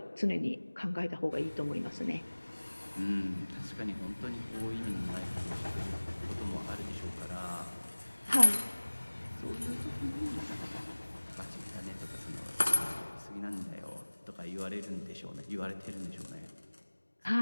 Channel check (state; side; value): inverted; both; correlation -1.00